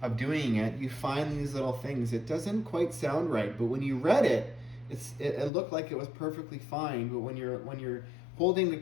of doing it, you find these little things. It doesn't quite sound right, but when you read it, it looked like it was perfectly fine. But when you're holding the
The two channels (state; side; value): drops out; right; at 5.5 s